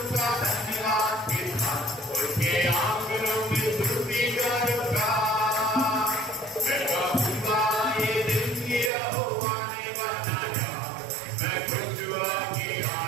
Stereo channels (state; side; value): drops out; left; at 8.9 s